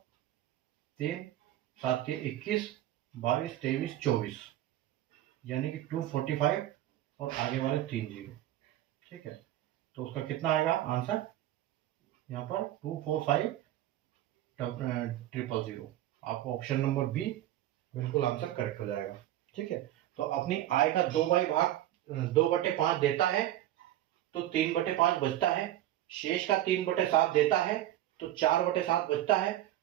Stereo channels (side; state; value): left; quieter; 13.6 dB